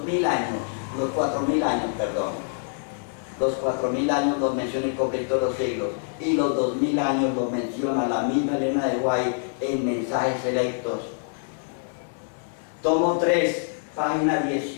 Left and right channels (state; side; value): silent; right; 61 dB below the other